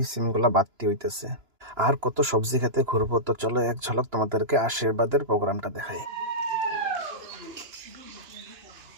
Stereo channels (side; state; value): left; late; 2.9 ms